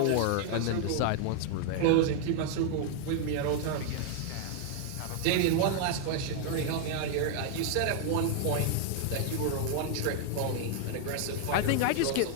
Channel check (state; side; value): different; both; correlation 0.00